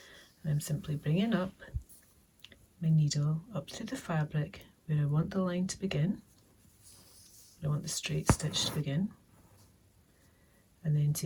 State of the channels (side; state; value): both; identical; correlation 1.00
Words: and I'm simply bringing up my needle up through the fabric where I want the line to begin, where I want the straight stitch to begin, and then